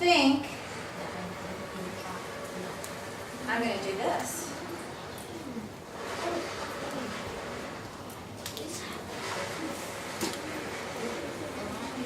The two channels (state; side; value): identical; both; correlation 1.00